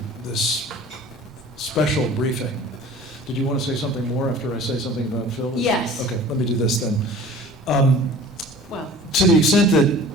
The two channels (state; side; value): normal; both; correlation 0.44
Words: this special briefing. Did you want to say something more after I say something about Phil? Yes. Okay, let me do this then. Well, To the extent that